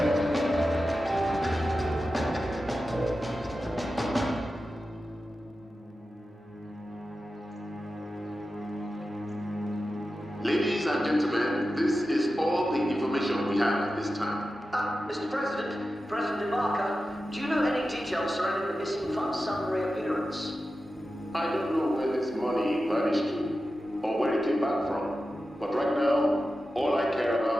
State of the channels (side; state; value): both; normal; correlation 0.92